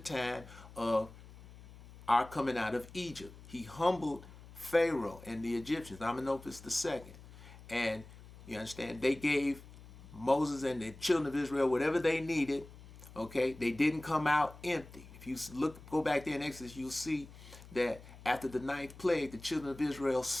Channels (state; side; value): noise; left; hum, 18 dB below the sound